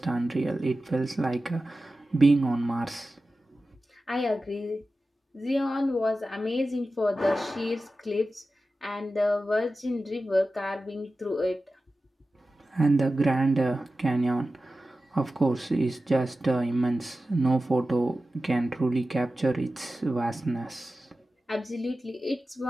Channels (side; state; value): both; normal; correlation 0.94